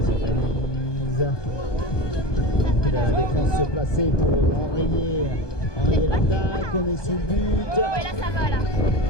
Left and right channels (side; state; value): right; late; 1.2 ms